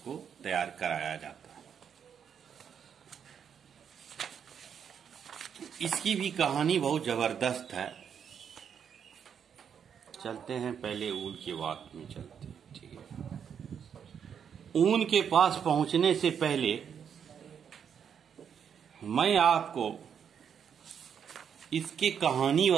तैयार कराया जाता है। इसकी भी कहानी बहुत जबरदस्त है। चलते हैं पहले ऊन की बात में चलते हैं। ठीक है, ऊन के पास पहुंचने से पहले मैं आपको इसकी कहानी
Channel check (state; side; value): quieter; left; 7.7 dB